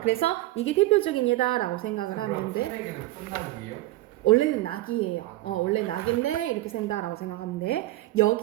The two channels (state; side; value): quieter; left; 17.5 dB